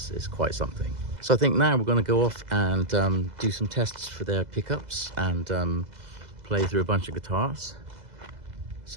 quite something. So I think now we're going to go off and do some tests for their pickups and play through a bunch of guitars.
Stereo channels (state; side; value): late; left; 2.0 ms